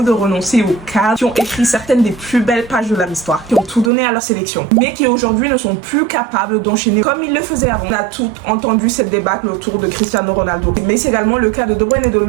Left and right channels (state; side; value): drops out; left; at 3.9 s